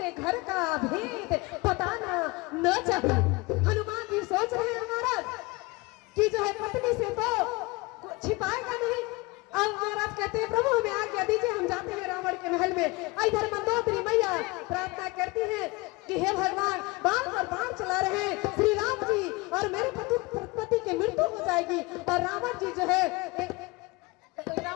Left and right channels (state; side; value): quieter; right; 24.0 dB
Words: घर का भेद बताना न चाहिए। हनुमान जी सोच रहे हैं महाराज कि जो है पत्नी से तो छिपाएगा नहीं। अब महाराज कहते हैं प्रभु हमें आज्ञा दीजिए, हम जाते हैं रावण के महल में। इधर मंदोदरी मैया प्रार्थना करती है कि हे भगवान बाण पर बाण चला रहे हैं श्री राम जी और मेरे पति की मृत्यु हो जाएगी। और रावण जी जो है